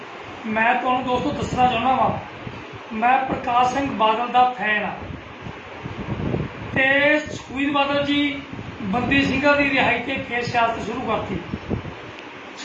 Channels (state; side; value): identical; both; correlation 1.00